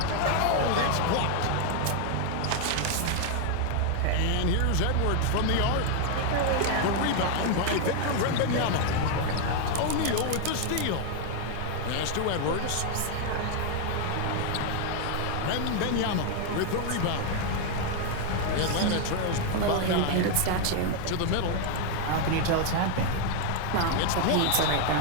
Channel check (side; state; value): both; different; correlation 0.01